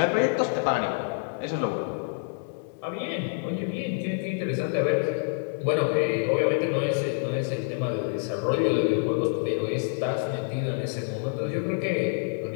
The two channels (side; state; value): right; silent; digital silence